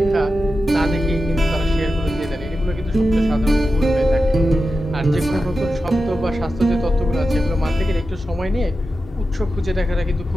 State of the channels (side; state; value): both; normal; correlation 0.91